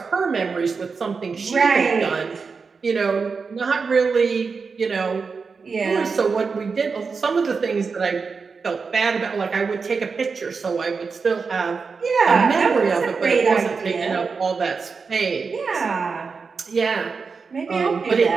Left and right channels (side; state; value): left; quieter; 5.0 dB